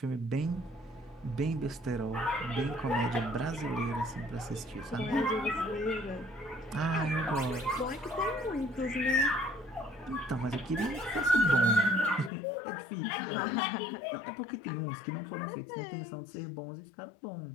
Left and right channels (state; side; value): drops out; right; at 12.3 s